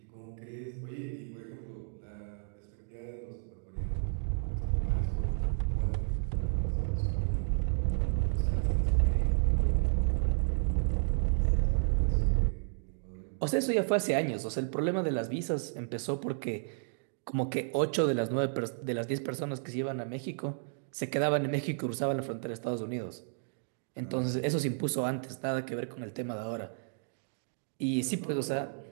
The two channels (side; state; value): left; silent; digital silence